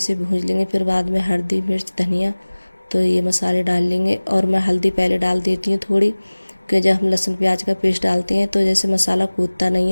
भून लेंगे, फिर बाद में हल्दी मिर्च धनिया, तो ये मसाले डाल लेंगे। और मैं हल्दी पहले डाल देती हूँ थोड़ी, कि जब हम लहसुन प्याज का पेस्ट डालते हैं तो जैसे मसाला कूदता नहीं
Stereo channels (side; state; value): both; inverted; correlation -1.00